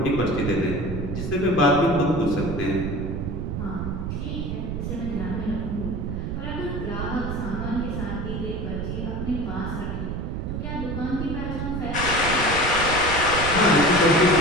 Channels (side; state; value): right; noise; rumble, 4 dB below the sound